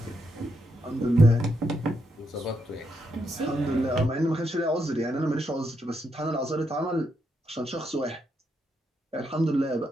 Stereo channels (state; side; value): normal; both; correlation 0.80